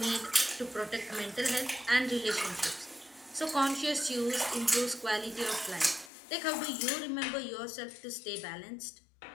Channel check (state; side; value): drops out; right; at 6.1 s